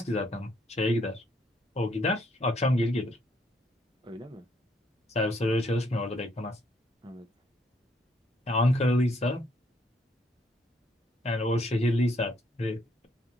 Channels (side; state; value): both; normal; correlation 0.70